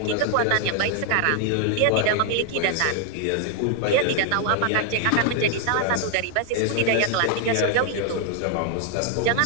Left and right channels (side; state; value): both; different; correlation 0.00